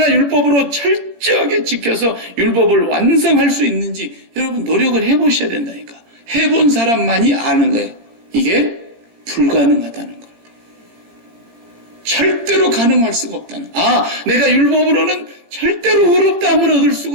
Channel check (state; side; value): late; left; 17 ms